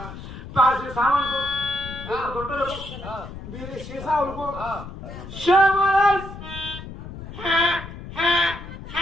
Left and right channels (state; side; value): noise; left; rumble, 12 dB below the sound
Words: ప్లాస్టిక్ సామాన్కు గుంటలకు బీరి సీసాలకు